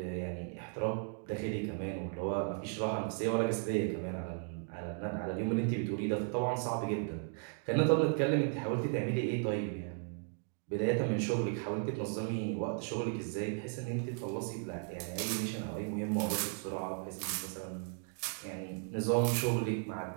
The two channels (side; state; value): left; silent; 54 dB below the other